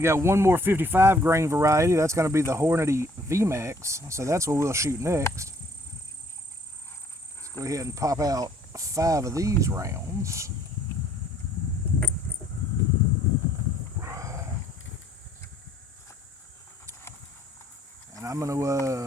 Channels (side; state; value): both; normal; correlation 0.62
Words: got one more 55 grain variety. That's going to be the Hornady VMAX. So that's what we'll shoot next. Let's go ahead and pop out 5 of these rounds. And I'm going